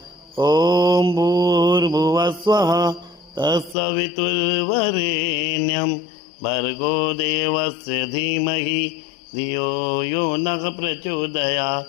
ओम भूर्भुवस्वः तत्सवितुर्वरेण्यं भर्गो देवस्य धीमहि धियो यो नः प्रचोदयात्।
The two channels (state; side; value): drops out; right; at 3.8 s